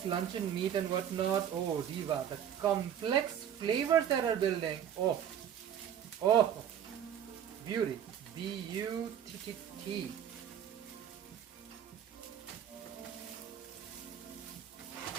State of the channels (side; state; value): left; quieter; 9.3 dB